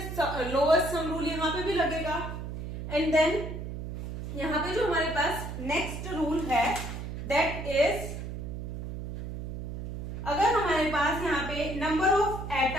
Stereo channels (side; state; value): right; noise; hum, 6 dB below the sound